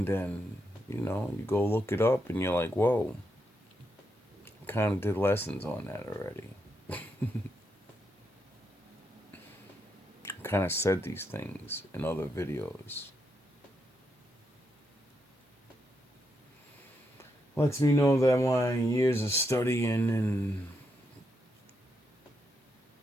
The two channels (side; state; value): both; normal; correlation 0.81